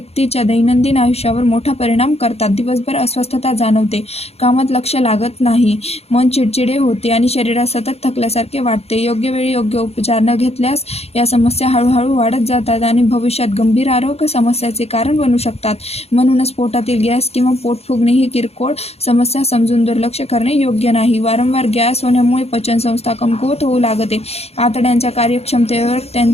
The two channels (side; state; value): right; late; 0.30 ms